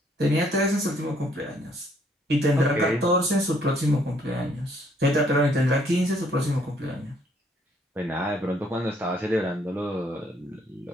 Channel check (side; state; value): both; normal; correlation 0.66